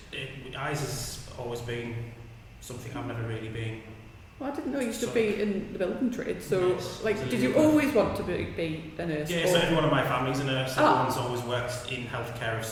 eyes has always been something I've never really been. Well, I didn't know you used to be in the building trade, so Yes, did you always want to be a nurse? Yeah, so everyone in my family's a nurse. Everyone's always worked in healthcare of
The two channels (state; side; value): identical; both; correlation 1.00